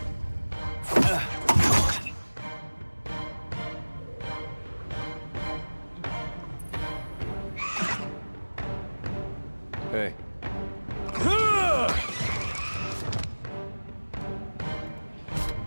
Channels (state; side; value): inverted; both; correlation -1.00